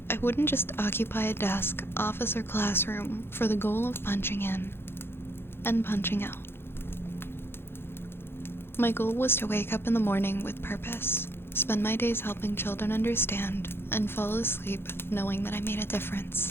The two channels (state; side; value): late; right; 0.11 ms